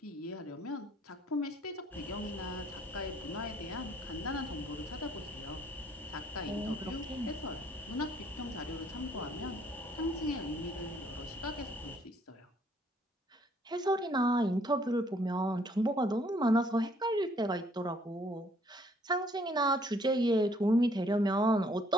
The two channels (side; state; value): both; normal; correlation 0.63